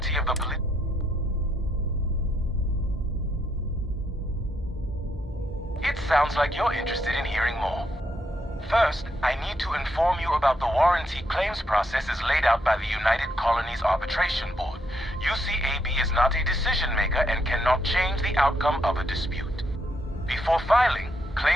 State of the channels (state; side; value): normal; both; correlation 0.76